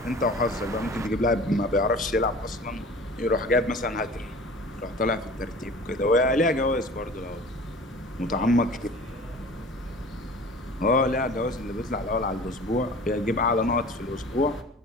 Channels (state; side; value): normal; both; correlation 0.42